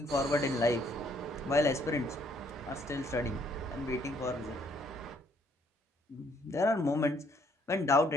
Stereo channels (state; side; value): normal; both; correlation 0.66